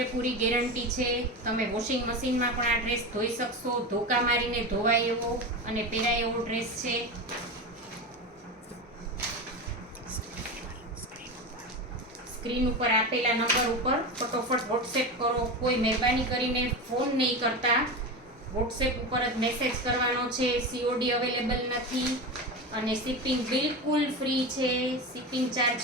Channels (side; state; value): both; normal; correlation 0.22